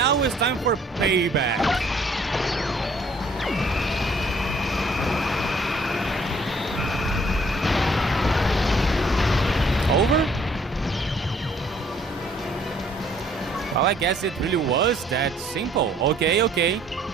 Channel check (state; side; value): normal; both; correlation 0.61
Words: it's time for payback. Over? Well, I guess it really was that simple. Okay.